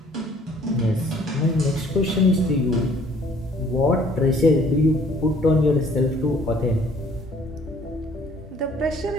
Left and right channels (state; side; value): normal; both; correlation 0.58